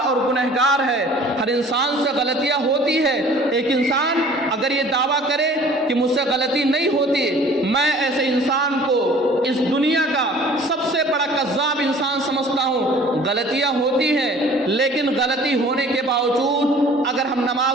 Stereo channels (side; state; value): both; normal; correlation 0.49